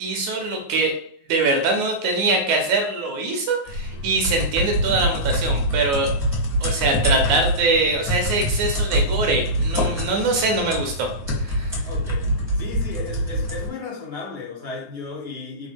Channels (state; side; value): late; left; 9.5 ms